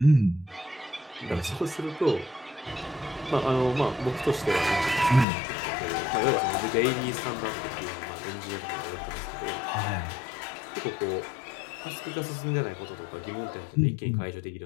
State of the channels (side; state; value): right; drops out; at 5.2 s